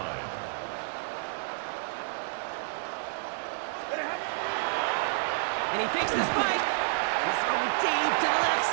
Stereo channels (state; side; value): silent; left; digital silence